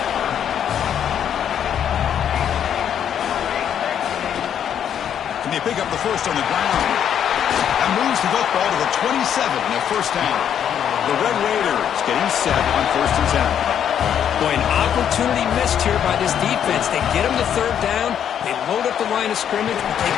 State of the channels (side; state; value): right; quieter; 9.1 dB